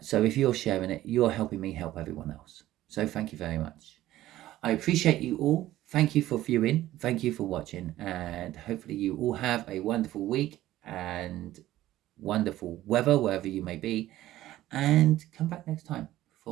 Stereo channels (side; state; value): left; quieter; 14.7 dB